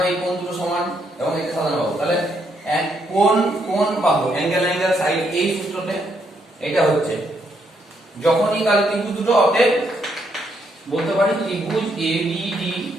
এই কোণ দুটো সমান এবং এটা সাধারণ বাহু। তাহলে কোণ কোণ বাহু, অ্যাঙ্গেল অ্যাঙ্গেল সাইড, এই সূত্রতে এটা হচ্ছে যখনই তাহলে ত্রিভুজ দুটো, অতএব বলতে পারি ত্রিভুজ এবিডি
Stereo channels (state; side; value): normal; both; correlation 0.75